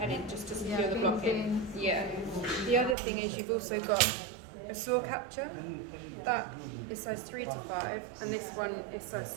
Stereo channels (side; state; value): left; drops out; at 3.0 s